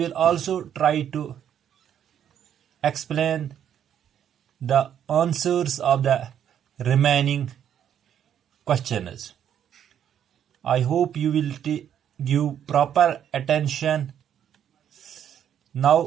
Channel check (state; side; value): quieter; left; 9.5 dB